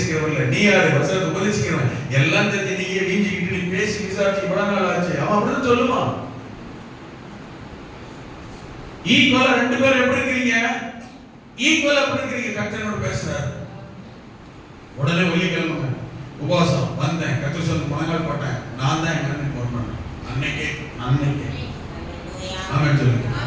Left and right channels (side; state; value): both; identical; correlation 1.00